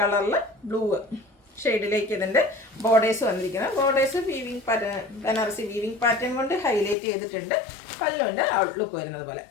കളറിൽ ബ്ലൂ ഷെയ്ഡിലേക്ക് ഇതിൻ്റെ ബോർഡേഴ്സ് വന്നിരിക്കുന്നത്. Borders weaving pattern, Banarasi weaving pattern കൊണ്ട് ഹൈലൈറ്റ് ചെയ്തിട്ടുണ്ട്. പല്ലുവിൻ്റെ ഔട്ട്ലുക്ക് വരുന്നത് പോലെ.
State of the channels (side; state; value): right; drops out; at 7.0 s